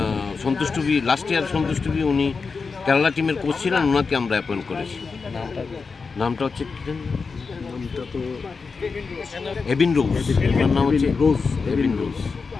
সন্তুষ্টবি লাস্ট ইয়ার সন্তুষ্টবি উনি কেরালা টিমের কোচ ছিলেন ওনাকে আমরা অ্যাপয়েন্ট করেছি নামটা হচ্ছে এবিন রোজ ওনার নাম হচ্ছে এবিন রোজ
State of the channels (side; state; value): right; quieter; 4.8 dB